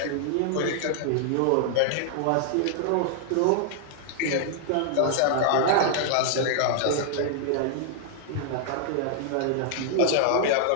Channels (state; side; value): different; both; correlation -0.01